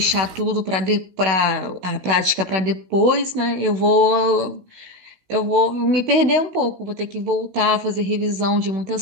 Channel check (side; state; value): left; late; 16 ms